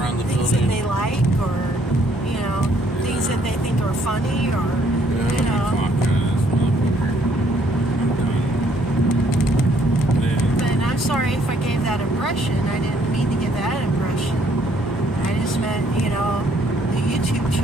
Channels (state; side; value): normal; both; correlation 0.66